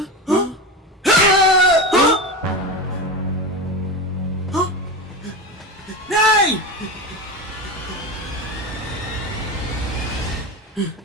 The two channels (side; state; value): both; normal; correlation 0.22